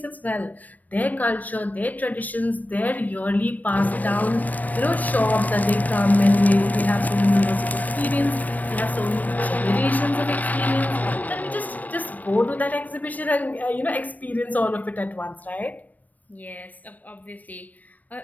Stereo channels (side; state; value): right; late; 0.080 ms